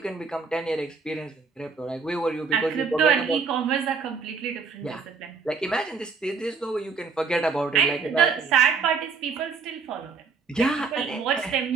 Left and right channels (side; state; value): left; quieter; 5.1 dB